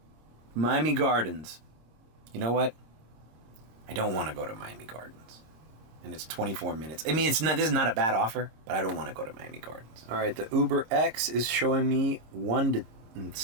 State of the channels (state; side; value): late; left; 26 ms